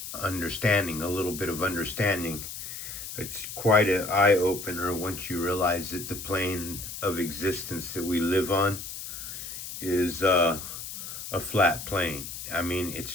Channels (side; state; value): left; noise; hiss, 9 dB below the sound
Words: understanding, a little bit of understanding. It's quite an eye-opener once you realize that the plane of existence that we live on is a flat plane. I mean, it's